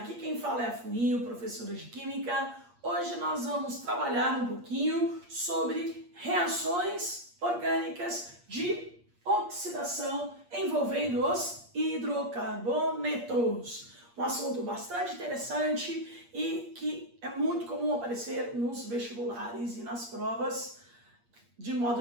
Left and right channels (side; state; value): left; late; 8.5 ms